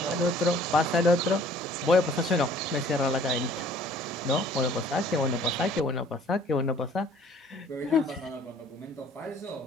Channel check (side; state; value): both; normal; correlation 0.55